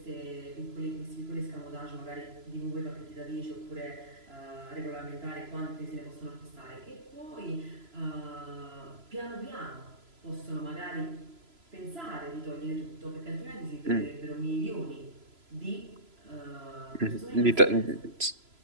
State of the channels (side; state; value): left; late; 3.0 ms